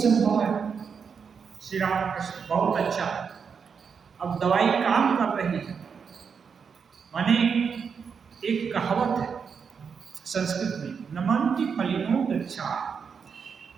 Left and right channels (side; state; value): left; quieter; 6.2 dB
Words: है। श्री रामकृष्ण बहुत अच्छा। अब दवाई काम कर रही है, माने एक कहावत है संस्कृत में, नमन्ति फलिनो वृक्षा।